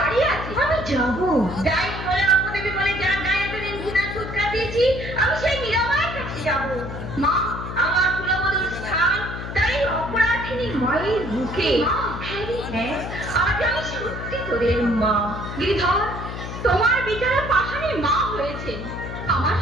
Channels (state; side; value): noise; left; hum, 8 dB below the sound